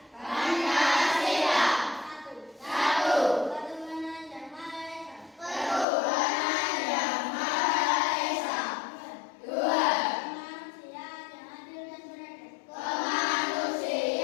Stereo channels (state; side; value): drops out; right; at 5.9 s